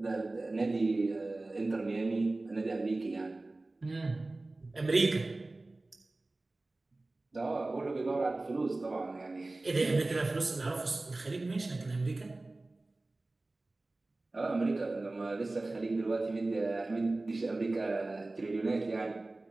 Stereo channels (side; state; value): left; quieter; 3.0 dB